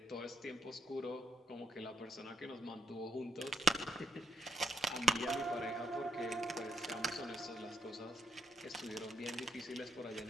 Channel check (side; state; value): both; normal; correlation 0.74